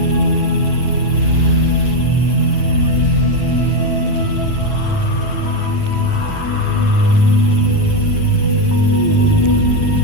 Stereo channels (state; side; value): late; right; 9.1 ms